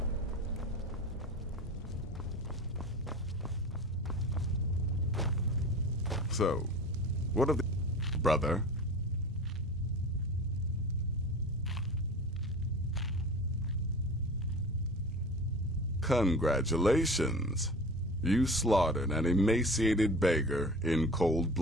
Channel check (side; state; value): both; normal; correlation 0.37